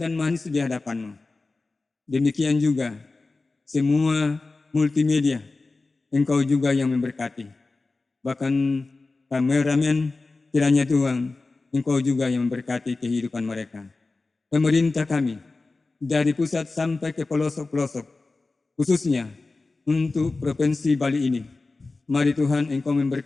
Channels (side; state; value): right; quieter; 3.5 dB